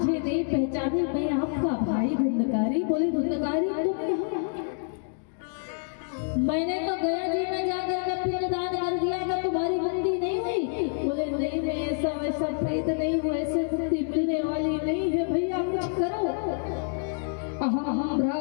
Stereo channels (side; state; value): right; silent; 60 dB below the other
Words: नहीं पहचाने, मैं आपका भाई धुंधकारी। बोले धुंधकारी तुम यहाँ? मैंने तो गया जी में जाकर के पिंडदान कर दिया, कि तुम्हारी मुक्ति नहीं हुई? बोले नहीं मैं ऐसा वैसा प्रेत नहीं हूँ, ऐसे मुक्ति मिलने वाली नहीं है, भैया कुछ करो। अहम